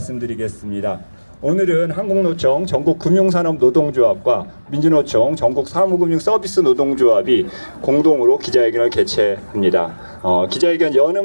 오늘은 한국노총 전국금융산업노동조합과 민주노총 전국사무금융서비스노동조합이 공동으로 기자회견을 개최합니다. 기자회견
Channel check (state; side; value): inverted; both; correlation -1.00